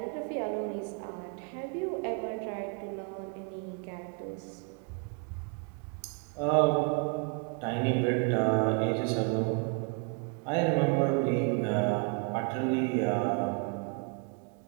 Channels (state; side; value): quieter; left; 35.3 dB